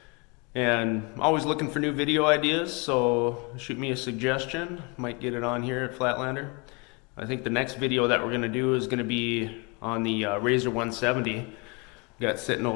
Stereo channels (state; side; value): quieter; right; 30.4 dB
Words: And I'm always looking for new video ideas, so shoot me a suggestion. Might get it on here at Flatlander. I think the next video that we're going to do is going to be on the Razor 170. Got sitting